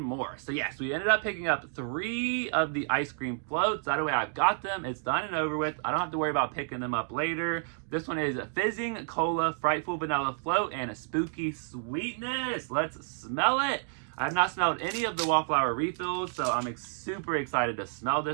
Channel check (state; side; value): silent; left; 57 dB below the other